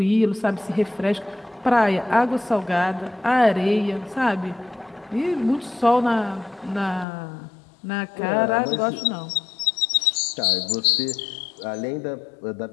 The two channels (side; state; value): right; drops out; at 7.1 s